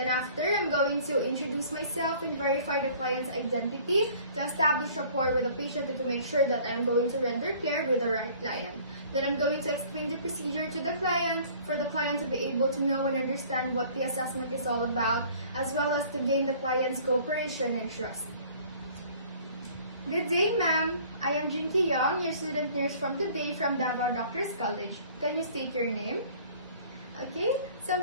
after, I'm going to introduce myself and verify the client's identity to establish rapport with the patient and to make sure that I'm going to render care with the right client. Then I'm going to explain the procedure to the client for the client to be able to know and understand what the assessment is all about, as well as to gain the client's cooperation and trust. Good day, ma'am. I am Jinky Young, your student nurse from today from Davao Doctors College. Can you state your name? Okay, so I'm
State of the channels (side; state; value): both; inverted; correlation -0.52